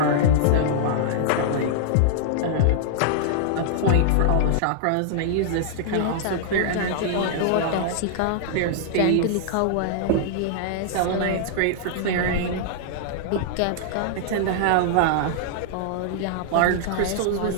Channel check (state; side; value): different; both; correlation -0.01